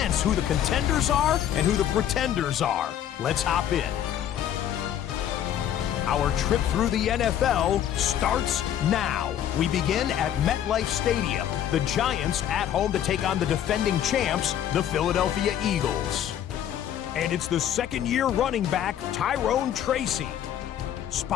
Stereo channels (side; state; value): right; quieter; 10.5 dB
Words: who the contenders are and who the pretenders are. Let's hop in. Our trip through the NFL starts now. We begin at MetLife Stadium. The Giants at home to take on the defending champs, the Philadelphia Eagles. And it's the 2nd-year running back, Tyrone Tracy.